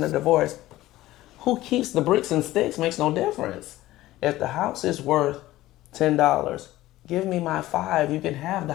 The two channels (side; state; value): right; quieter; 16.2 dB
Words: the divorce. Who keeps the bricks and sticks makes no difference. If the house is worth $10, give me my $5. You can have the